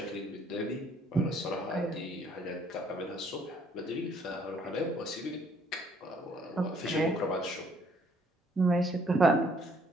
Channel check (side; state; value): both; normal; correlation 0.64